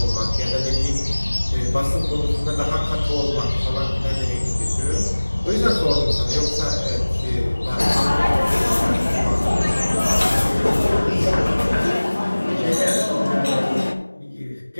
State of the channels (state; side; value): inverted; both; correlation -1.00